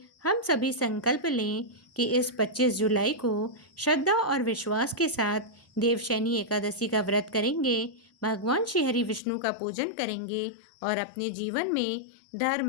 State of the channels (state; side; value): drops out; right; at 9.2 s